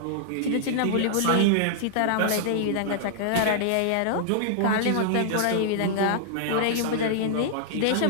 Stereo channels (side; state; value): both; different; correlation -0.01